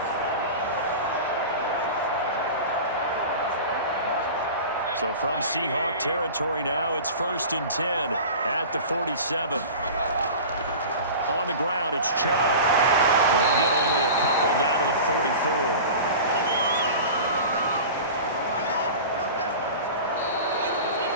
So from Seahawk territory now, it's 1st and 10 at the 47. On the ground, it's Chubb. They'll get only a couple down to the 44.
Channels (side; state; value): both; inverted; correlation -0.35